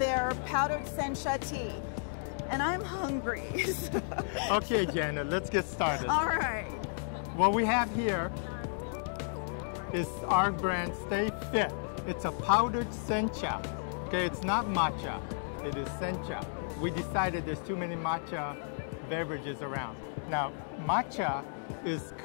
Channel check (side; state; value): right; silent; digital silence